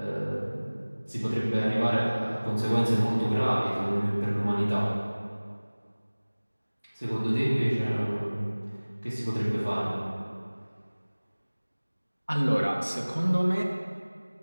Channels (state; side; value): inverted; both; correlation -1.00